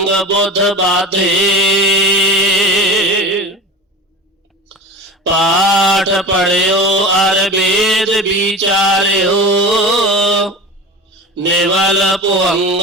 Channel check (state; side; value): normal; both; correlation 0.31